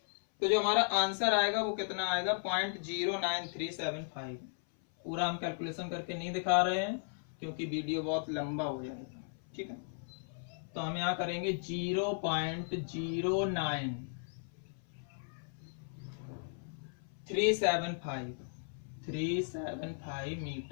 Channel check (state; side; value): silent; right; 54 dB below the other